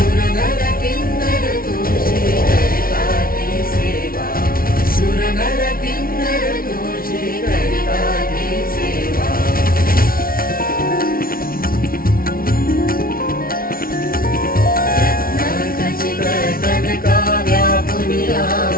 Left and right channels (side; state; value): right; late; 0.43 ms